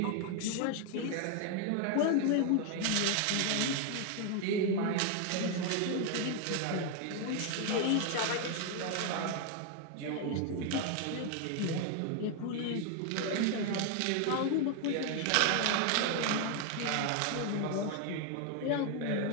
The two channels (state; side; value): different; both; correlation 0.01